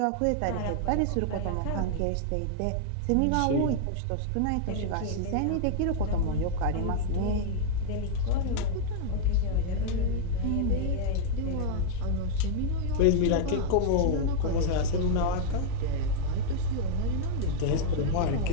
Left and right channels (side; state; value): both; different; correlation -0.01